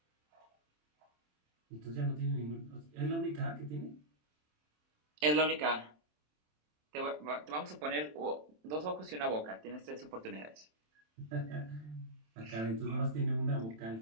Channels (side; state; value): left; late; 27 ms